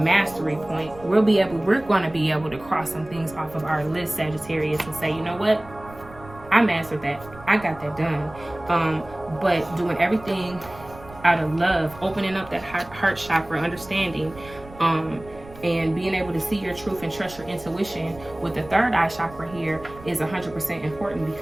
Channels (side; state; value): right; noise; rumble, 19 dB below the sound